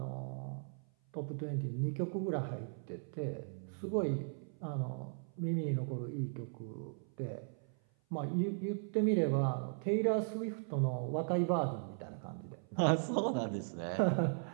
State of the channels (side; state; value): left; silent; 53 dB below the other